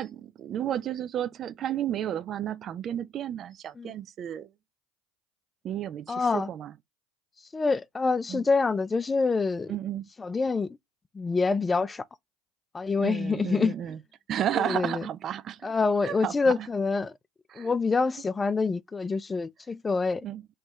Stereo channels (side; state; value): both; normal; correlation 0.82